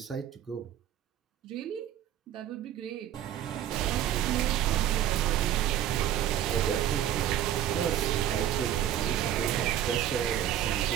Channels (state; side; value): quieter; left; 11.3 dB